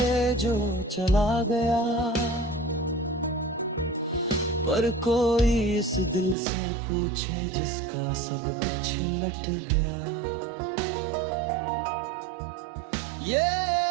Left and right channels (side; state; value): left; drops out; at 6.4 s